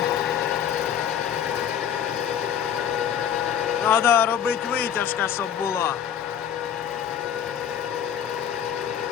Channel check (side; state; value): right; quieter; 8.9 dB